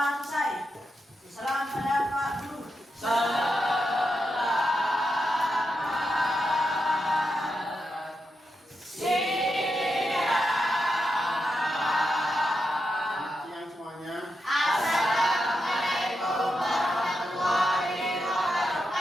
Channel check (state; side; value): normal; both; correlation 0.86